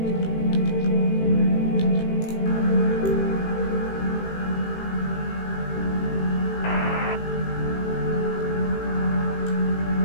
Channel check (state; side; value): late; right; 18 ms